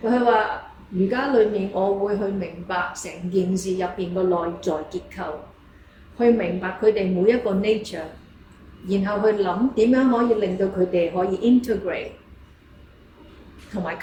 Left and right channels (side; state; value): both; identical; correlation 1.00